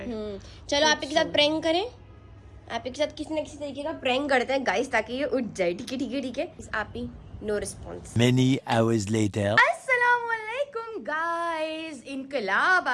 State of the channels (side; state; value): both; identical; correlation 1.00